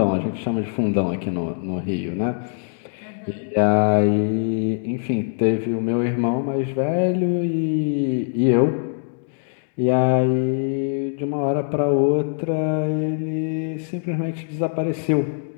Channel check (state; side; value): silent; right; digital silence